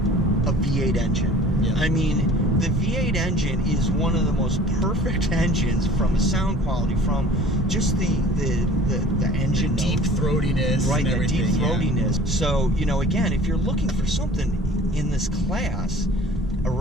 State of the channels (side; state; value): both; normal; correlation 0.48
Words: a V8 engine. Yeah. I mean, the V8 engine is one of the most perfect engines from the sound quality, from just the engine the deep throatiness, right? And The deep throatiness. So, you know, again, if you're looking for something in this class